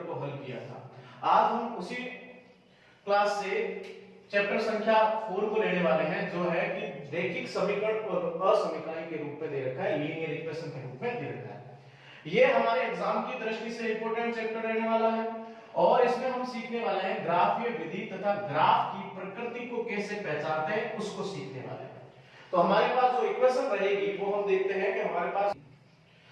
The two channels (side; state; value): both; identical; correlation 1.00